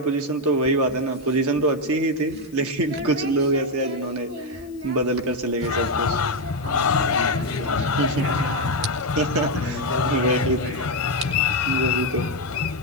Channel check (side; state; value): left; noise; hiss, 28 dB below the sound